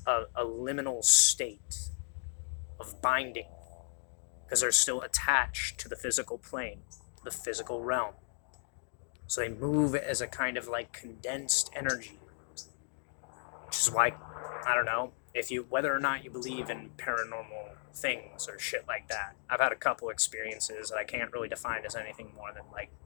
a liminal state of binding because they're still attached to the physical plane, the physical realm. So they move as a kind of like condensed energy, which is why, I don't know, if you, whether or not you believe in paranormal things or shit like that. I've had a couple experiences that I can't really define as anything more than like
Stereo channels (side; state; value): right; silent; digital silence